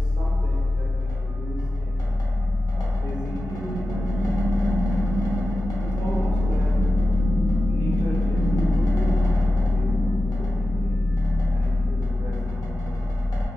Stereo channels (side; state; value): both; normal; correlation 0.93